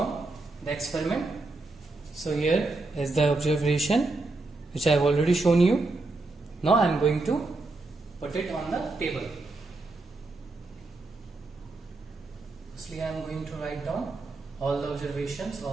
the experiment. So here is the observation which I have already shown you. Now I am going to put it on the table. Firstly, I am going to write down all the observations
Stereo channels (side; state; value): left; quieter; 3.2 dB